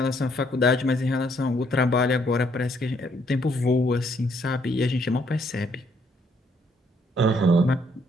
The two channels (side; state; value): both; normal; correlation 0.69